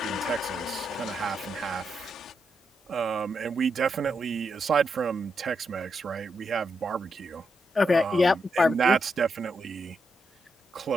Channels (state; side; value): normal; both; correlation 0.83